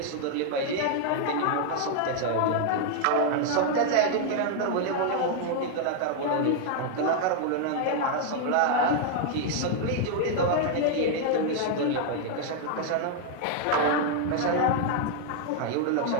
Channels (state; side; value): different; both; correlation 0.00